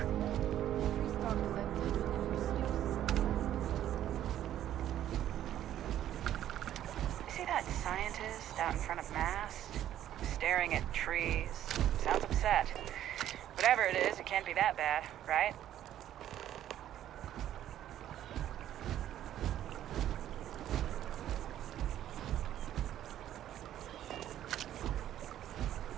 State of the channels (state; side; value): quieter; left; 11.7 dB